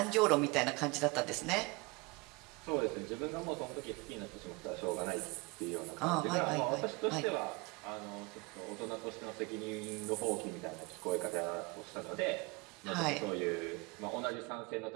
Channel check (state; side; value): quieter; left; 26.6 dB